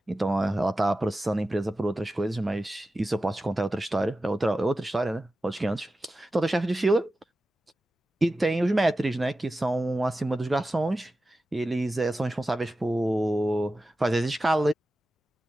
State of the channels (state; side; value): normal; both; correlation 0.94